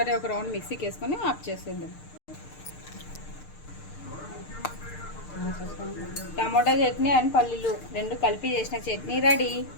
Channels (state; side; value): late; right; 6.6 ms